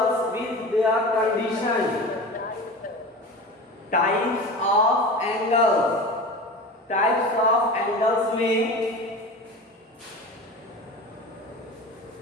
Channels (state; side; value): normal; both; correlation 0.32